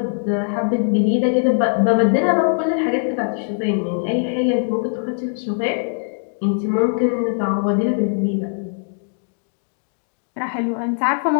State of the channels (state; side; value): silent; right; digital silence